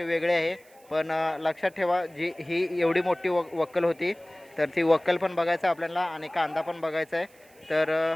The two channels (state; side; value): noise; right; hiss, 29 dB below the sound